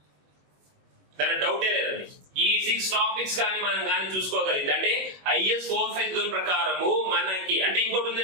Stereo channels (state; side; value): late; left; 21 ms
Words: దాని డౌటే లేదండి. ఈ 6 టాపిక్స్ కానీ మనం కానీ చూసుకోగలిగితే అంటే IS 452 ప్రకారము మనకి అంటే ఇంకోటి